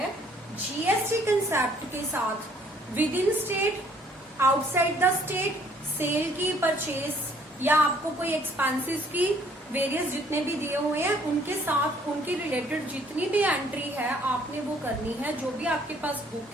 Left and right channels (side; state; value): both; normal; correlation 0.61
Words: जीएसटी कंसेप्ट के साथ within state, outside the state, sale की, परचेज या आपको कोई एक्सपेंसेस की वेरियस जितने भी दिए हुए हैं उनके साथ उनके रिलेटेड जितनी भी एंट्री है आपने वो करनी है। जो भी आपके पास